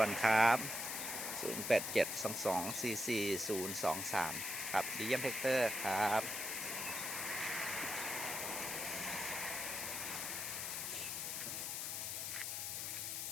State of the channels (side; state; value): left; noise; hiss, 3 dB below the sound